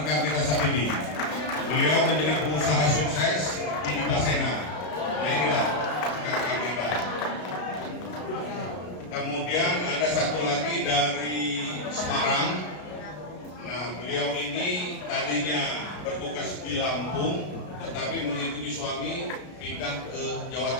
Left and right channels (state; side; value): late; right; 33 ms